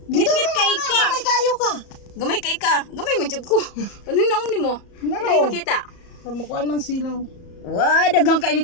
Ngit-ngit kay ka. Gamay kayo ka. Gamay kay ka. Gamay man jud ko. Anong naong nimo? Naro. Dili makita. Pamukuan man silaw. Wa daghang kay ni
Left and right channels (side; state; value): right; late; 34 ms